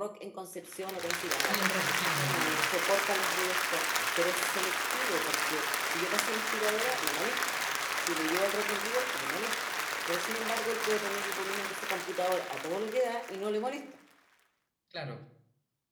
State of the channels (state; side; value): identical; both; correlation 1.00